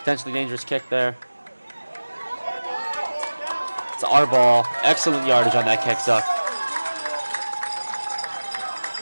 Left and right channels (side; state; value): both; inverted; correlation -1.00